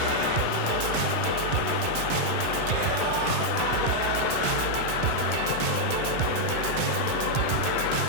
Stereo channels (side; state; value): both; different; correlation -0.01